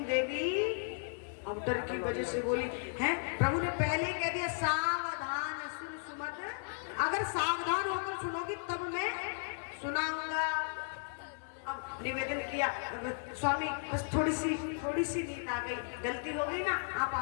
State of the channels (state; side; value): silent; right; 54 dB below the other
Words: देवी अब डर की वजह से बोली हैं। प्रभु ने पहले कह दिया सावधान सुन सुमत, अगर सावधान होकर सुनोगी तब मैं सुनाऊंगा। अब निवेदन किया स्वामी बस थोड़ी सी नींद आ गई, गलती हो गई ना, आप